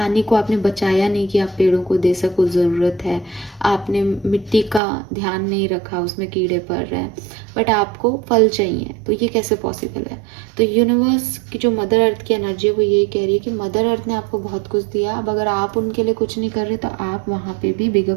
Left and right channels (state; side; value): drops out; left; at 4.8 s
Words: को आपने बचाया नहीं कि आप पेड़ों को दे सको, ज़रूरत है। आपने मिट्टी का ध्यान नहीं रखा, उसमें कीड़े पड़ रहे हैं, बट आपको फल चाहिए, तो ये कैसे पॉसिबल है? तो यूनिवर्स की जो मदर अर्थ की एनर्जी है वो यही कह रही है कि मदर अर्थ ने आपको बहुत कुछ दिया, अब अगर आप उनके लिए कुछ नहीं कर रहे तो आप वहाँ पे भी बिगर